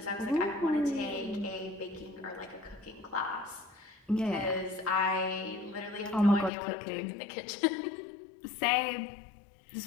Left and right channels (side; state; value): right; drops out; at 6.5 s